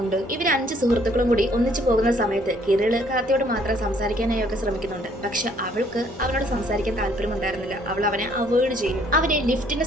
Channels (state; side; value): normal; both; correlation 0.63